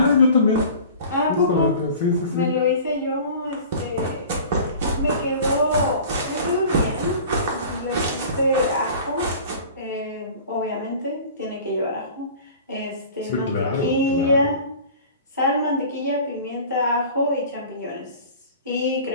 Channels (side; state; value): both; inverted; correlation -0.42